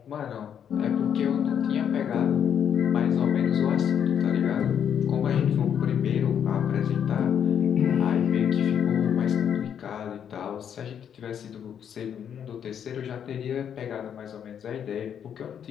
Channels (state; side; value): quieter; right; 8.6 dB